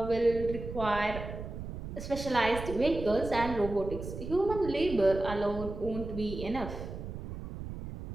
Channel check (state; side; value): noise; right; rumble, 8 dB below the sound